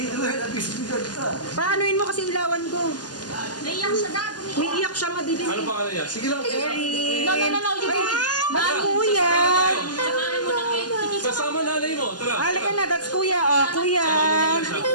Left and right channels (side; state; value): right; late; 0.70 ms